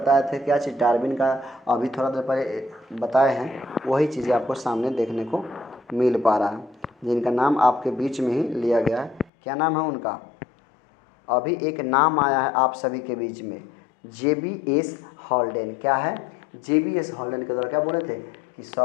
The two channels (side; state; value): right; drops out; at 9.3 s